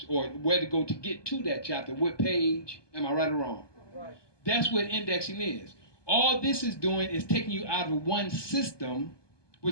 or where to go to get to that chapter, what page. Am I right or wrong? Right. That's what indexing is. All this is doing is taking you out of one system,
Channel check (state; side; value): late; right; 1.2 ms